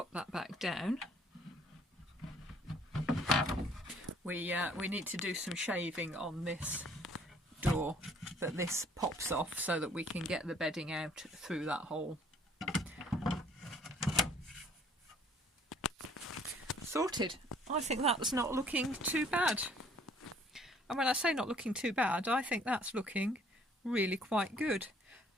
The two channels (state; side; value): normal; both; correlation 0.59